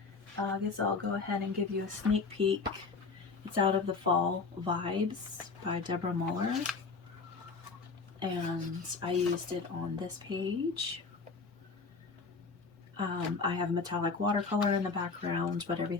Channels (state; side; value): quieter; right; 4.5 dB